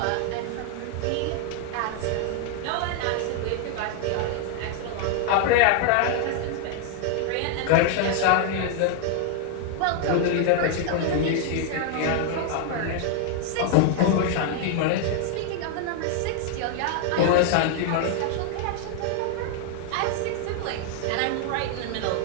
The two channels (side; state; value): both; different; correlation 0.00